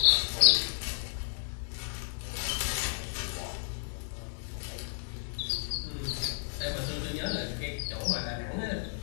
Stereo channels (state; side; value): silent; right; digital silence